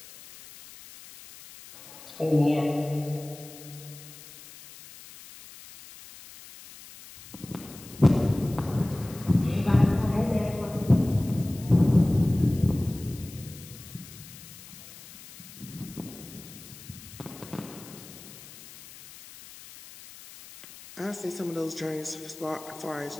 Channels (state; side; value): noise; left; hiss, 18 dB below the sound